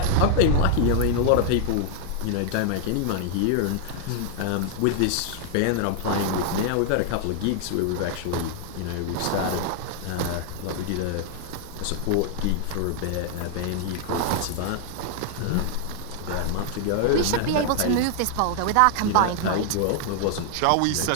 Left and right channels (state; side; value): different; both; correlation 0.00